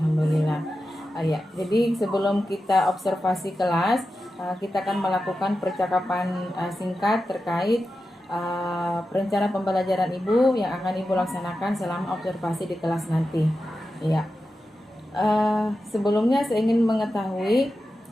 Ya, jadi sebelum kita observasi kelas, kita akan melakukan percakapan singkat terkait rencana pembelajaran Ibu yang akan Ibu laksanakan selama observasi di kelas nanti. Ya. Sebelumnya saya ingin mengetahui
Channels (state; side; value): normal; both; correlation 0.91